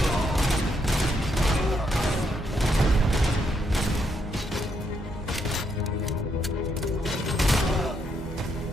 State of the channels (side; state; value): both; normal; correlation 0.77